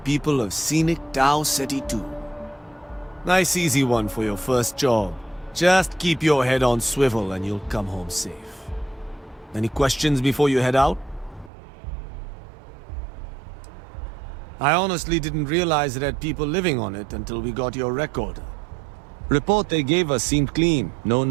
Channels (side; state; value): left; drops out; at 11.5 s